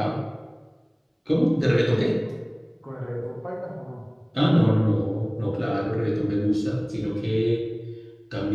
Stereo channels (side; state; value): both; identical; correlation 1.00